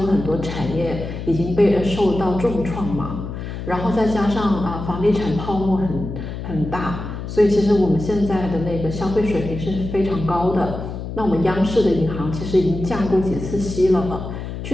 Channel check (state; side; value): noise; left; hum, 7 dB below the sound